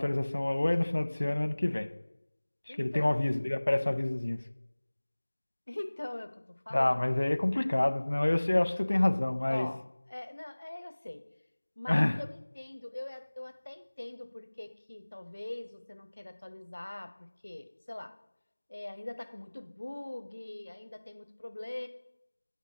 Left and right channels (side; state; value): both; inverted; correlation -1.00